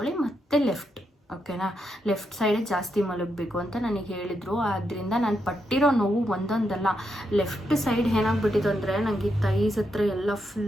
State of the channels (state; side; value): normal; both; correlation 0.82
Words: ಮತ್ತೆ ಲೆಫ್ಟ್. ಓಕೆನಾ, ಲೆಫ್ಟ್ ಸೈಡೇ ಜಾಸ್ತಿ ಮಲಗಬೇಕು ಅಂತ ನನಗೆ ಹೇಳಿದರು. ಆದ್ದರಿಂದ ನಾನು ಪಟ್ಟಿರೋ ನೋವು ಒಂದೊಂದಲ್ಲ. ಲೆಫ್ಟ್ ಸೈಡ್ ಏನಾಗ್ಬಿಟ್ಟಿತ್ತು ಅಂದರೆ ನನಗೆ ತೈಸ್ ಹತ್ರ ಎಲ್ಲ